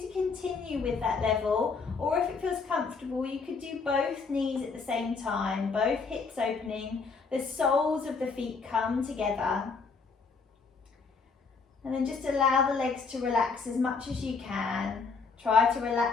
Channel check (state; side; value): quieter; right; 4.8 dB